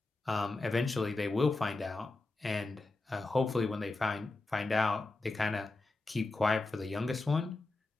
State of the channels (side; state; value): right; quieter; 3.2 dB